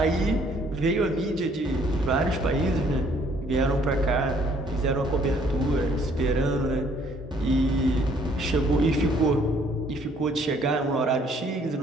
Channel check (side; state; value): both; normal; correlation 0.62